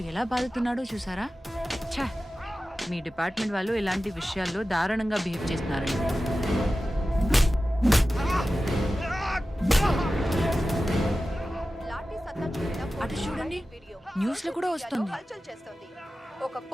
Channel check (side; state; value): both; normal; correlation 0.94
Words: ఎలా బాధతున్నాడో చూసారా? ఛా, మీ డిపార్ట్మెంట్ వాళ్ళు ఇలాంటి విషయాల్లో దారుణంగా బిహేవ్ చేస్తున్నారండి. అటు చూడండి, న్యూస్ లో కూడా వస్తుంది. ఒక